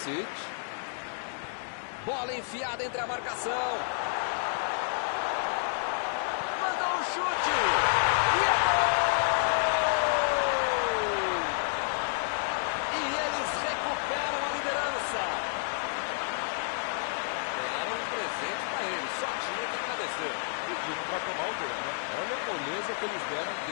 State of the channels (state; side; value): silent; right; digital silence